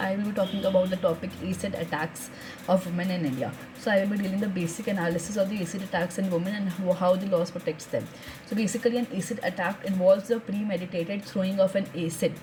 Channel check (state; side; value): identical; both; correlation 1.00